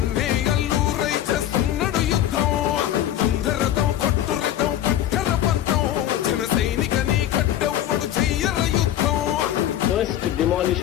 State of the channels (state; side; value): quieter; right; 11.8 dB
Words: అల్లూరై చేస్తున్నాడు యుద్ధం. దంధరదం కొట్టురిధం పట్టర పంతం జన సైనికని కట్టెవ్వడు చెయ్యర యుద్ధం. First